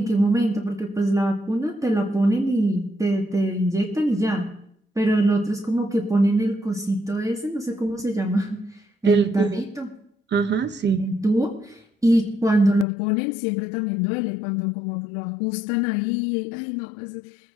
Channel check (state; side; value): drops out; right; at 12.9 s